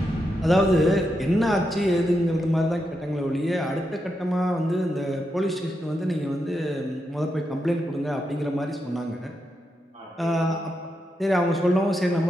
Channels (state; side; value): normal; both; correlation 0.84